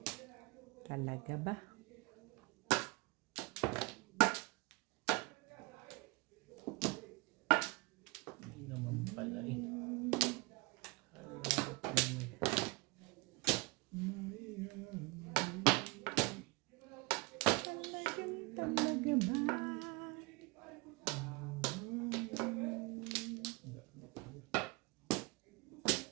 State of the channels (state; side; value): quieter; left; 25.9 dB